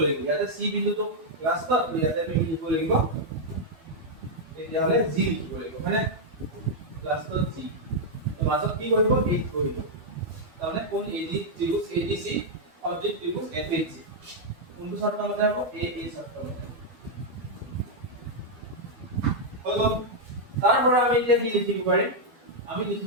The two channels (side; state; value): left; late; 12 ms